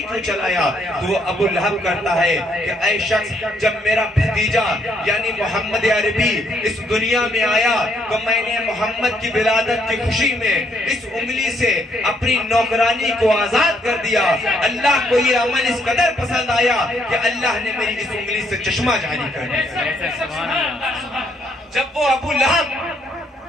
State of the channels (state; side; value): normal; both; correlation 0.71